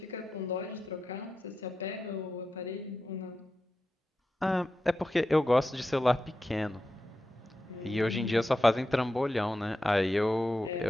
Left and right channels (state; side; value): normal; both; correlation 0.90